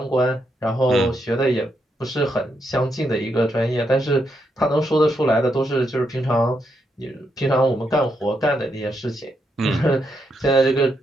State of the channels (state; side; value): normal; both; correlation 0.80